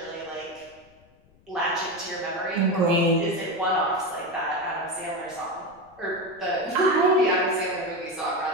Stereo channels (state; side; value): noise; left; rumble, 29 dB below the sound